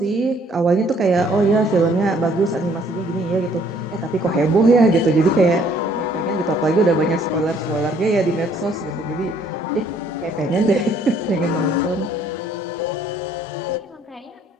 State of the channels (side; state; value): both; normal; correlation 0.62